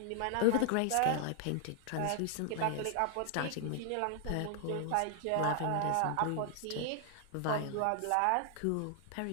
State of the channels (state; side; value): different; both; correlation 0.00